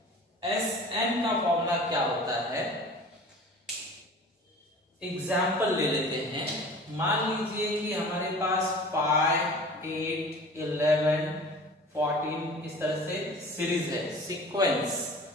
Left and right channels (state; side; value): normal; both; correlation 0.42